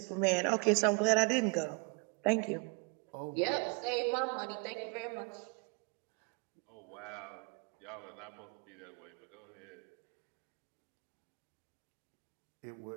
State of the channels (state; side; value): quieter; left; 33.2 dB